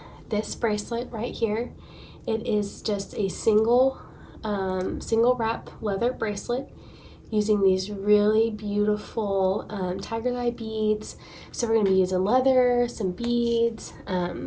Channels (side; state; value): both; identical; correlation 1.00